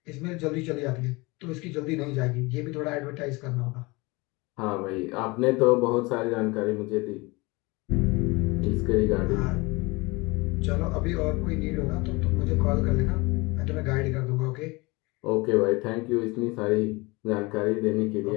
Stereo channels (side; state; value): right; quieter; 24.8 dB